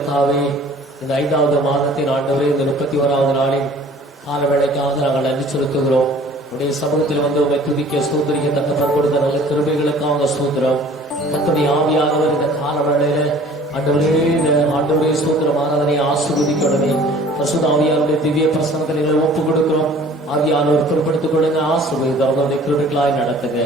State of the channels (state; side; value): normal; both; correlation 0.49